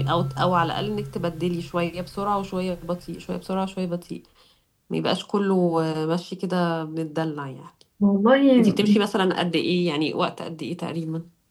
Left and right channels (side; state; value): both; identical; correlation 1.00